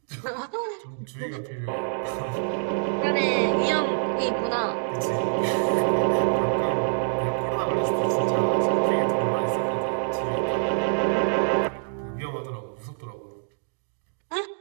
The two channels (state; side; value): silent; left; digital silence